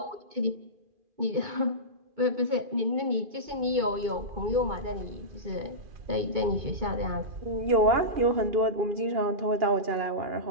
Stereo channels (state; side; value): late; left; 2.4 ms